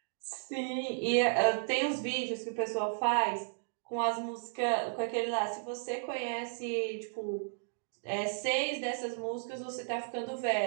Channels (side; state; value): left; silent; digital silence